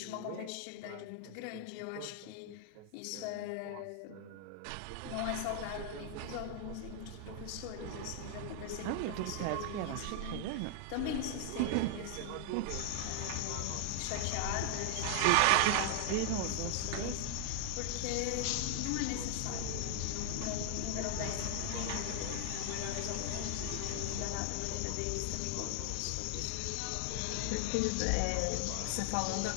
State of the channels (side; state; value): both; different; correlation 0.00